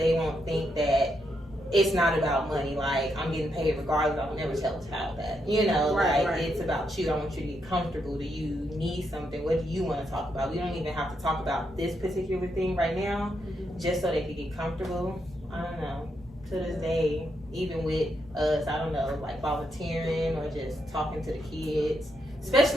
won't think that it's not about money, like, I'm getting paid regardless, I would never tell a child that, you know, it's about you, I want you to be comfortable, do you need something, what do you want to talk about, we don't even have to talk about this particular thing right now, just so they can get comfortable. I don't know, to this day, even with us, I don't know, like volunteering or just talking to the kids,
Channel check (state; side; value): normal; both; correlation 0.80